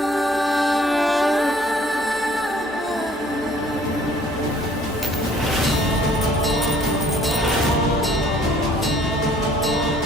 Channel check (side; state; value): both; normal; correlation 0.57